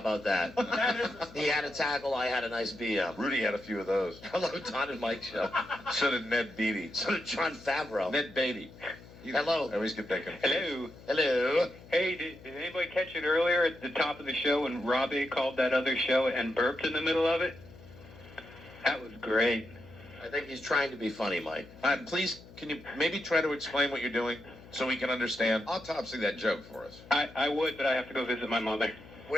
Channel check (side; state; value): left; noise; hum, 20 dB below the sound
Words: that? He had a tackle. I had a nice BM. Rudy had a few of those. Hello, Don and Mike show. So did Ned Beatty. So did John Favreau. Ned Beatty. Hello. I always get that confused. Hello. Hey, did anybody catch it earlier at the top of the show when Robbie called that other show and burped in the middle of it? That was great. I think he's trying to be funny, Mike. Please, can you maybe try to explain what you're doing so we can understand? Autopsy that joke for us. I would, but I have to go visit my mother.